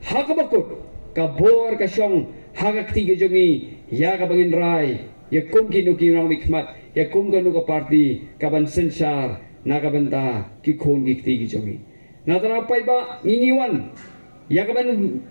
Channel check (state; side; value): inverted; both; correlation -1.00